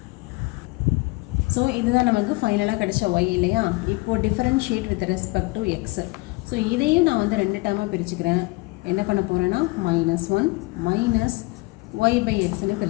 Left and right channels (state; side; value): quieter; right; 24.5 dB